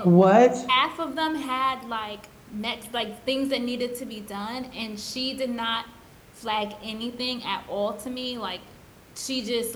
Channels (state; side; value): identical; both; correlation 1.00